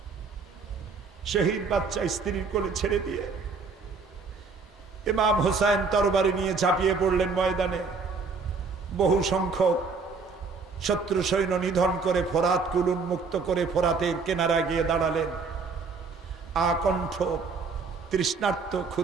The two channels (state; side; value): quieter; left; 4.6 dB